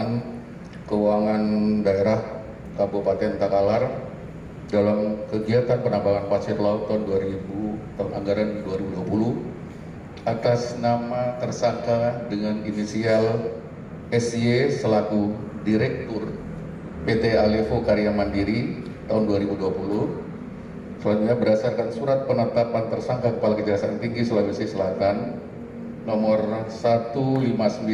Keuangan Daerah Kabupaten Takalar dalam kegiatan penambangan pasir laut tahun anggaran 2020 atas nama tersangka dengan inisial SY selaku Direktur PT Alevo Karya Mandiri tahun 2020. Selanjutnya berdasarkan surat penetapan tersangka Kepala Kejaksaan Tinggi Sulawesi Selatan nomor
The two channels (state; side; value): identical; both; correlation 1.00